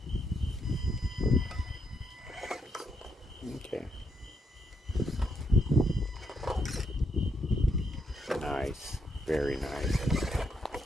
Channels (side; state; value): both; normal; correlation 0.78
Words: Okay. Nice. Very nice.